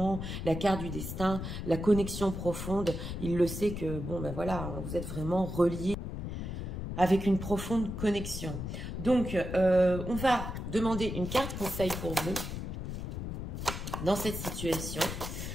la carte du destin, la connexion profonde. Il le sait que, bon ben voilà, vous êtes vraiment reliés avec une profonde connexion. Donc, on va demander une carte conseil pour vous dans cette situation.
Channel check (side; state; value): left; noise; rumble, 5 dB below the sound